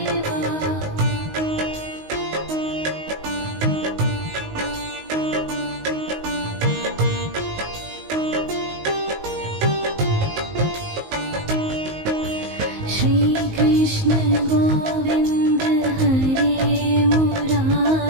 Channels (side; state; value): left; late; 19 ms